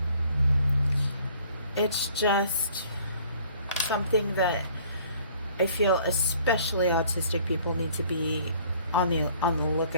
it's just something that I feel especially autistic people need to be on the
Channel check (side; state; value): both; inverted; correlation -0.56